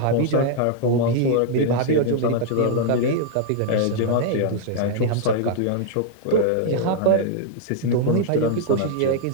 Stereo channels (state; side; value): different; both; correlation -0.01